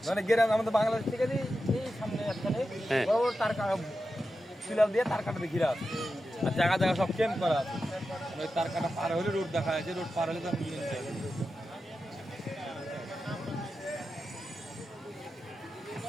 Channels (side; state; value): both; normal; correlation 0.91